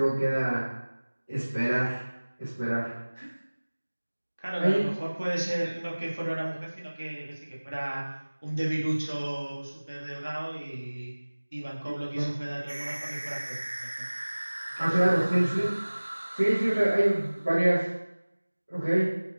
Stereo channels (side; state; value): both; inverted; correlation -1.00